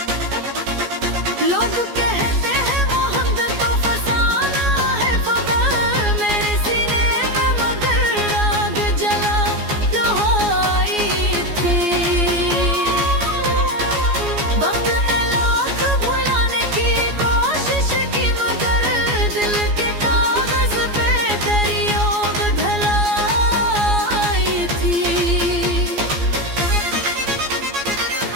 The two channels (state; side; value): late; left; 14 ms